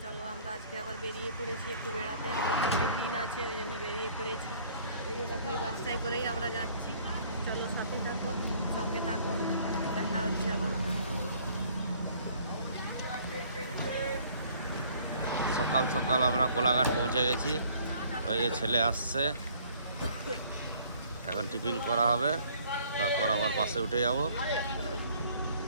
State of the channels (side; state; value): both; inverted; correlation -0.57